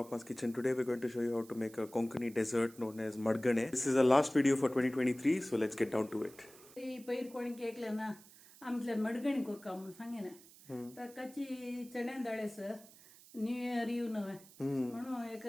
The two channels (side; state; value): right; noise; hiss, 22 dB below the sound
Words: Kitchen. Today we're going to show you how to make a Konkani dessert known as Madgane. This is the last video for 2023, so let's get down to it. पैर कोणी केकलं ना आमच्या मडगणी कोरका म्हणून सांगे ना तर कच्ची चण्या डाळेसर न्यू इयर येऊ नव्हे म्हणून एक